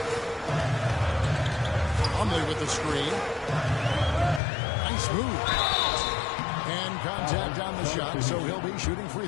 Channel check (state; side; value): drops out; right; at 4.4 s